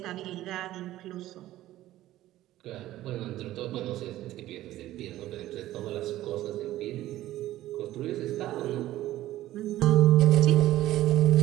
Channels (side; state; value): left; quieter; 14.8 dB